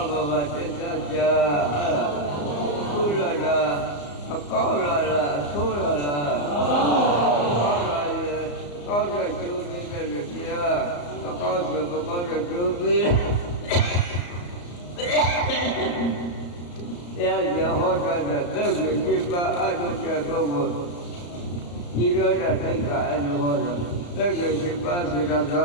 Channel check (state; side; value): late; right; 34 ms